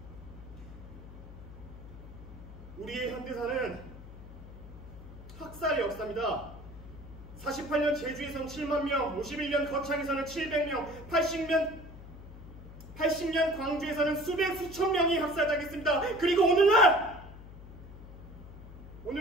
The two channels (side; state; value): left; noise; hum, 15 dB below the sound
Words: 우리의 현대사는 학살의 역사입니다. 48년 제주에선 7만 명, 51년 거창에서는 700명, 80년 광주에서는 수천 명이 학살당했습니다. 그리고